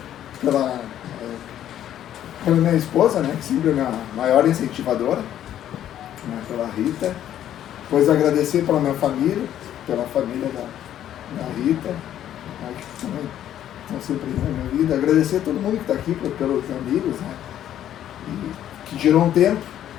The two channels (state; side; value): quieter; right; 11.2 dB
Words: pela minha esposa, né, que sempre é minha maior incentivadora, né, pela Rita. Depois agradecer pela minha família, pela família da Rita, né, que também estão sempre na minha vida. Agradecer a todo mundo que está aqui, pelos amigos, né, e que tirou um tempo,